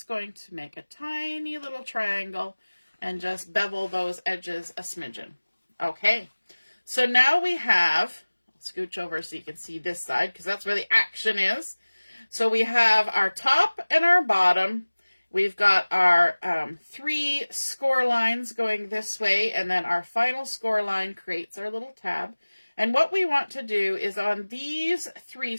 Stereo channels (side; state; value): both; inverted; correlation -1.00